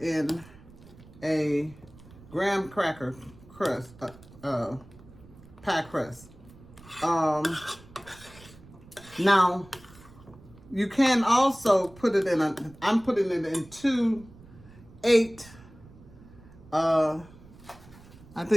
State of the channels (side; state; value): right; noise; rumble, 22 dB below the sound